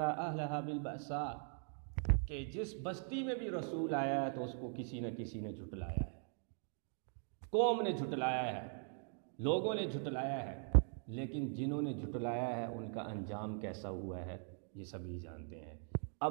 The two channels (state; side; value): silent; left; 50 dB below the other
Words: أَهْلَهَا بِالْبَأْسَاءِ، کہ جس بستی میں بھی رسول آیا ہے تو اس کو کسی نہ کسی نے جھٹلایا ہے، قوم نے جھٹلایا ہے۔ لوگوں نے جھٹلایا ہے، لیکن جنہوں نے جھٹلایا ہے ان کا انجام کیسا ہوا ہے یہ سبھی جانتے ہیں۔